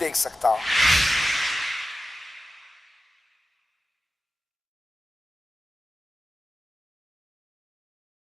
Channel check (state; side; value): normal; both; correlation 0.93